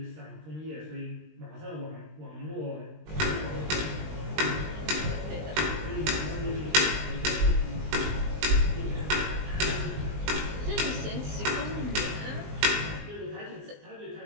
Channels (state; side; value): late; left; 20 ms